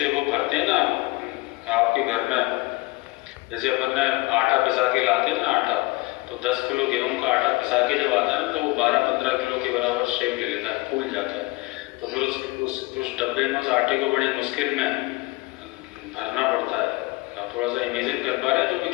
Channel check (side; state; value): right; quieter; 21.7 dB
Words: वो भरते हैं ना आपके घर में, जैसे अपन ने आटा पिसा के लाते हैं ना आटा, तो 10 किलो गेहूं का आटा पिसा के जब आता है ना तो वो 12-15 किलो के बराबर शेप ले लेता है, फूल जाता है। तो फिर उस डब्बे में उस आटे को बड़ी मुश्किल में भरना पड़ता है। आप थोड़ा सा इमेजिन कर पा रहे हैं जो मैं